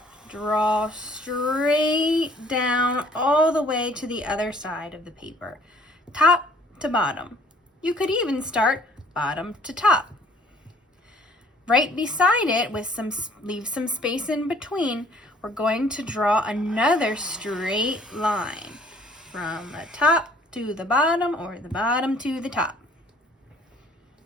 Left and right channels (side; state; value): both; normal; correlation 0.57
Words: draw straight down all the way to the other side of the paper, top to bottom. You could even start bottom to top. Right beside it, leave some space in between, we're going to draw another straight line from the top to the bottom or the bottom to the top.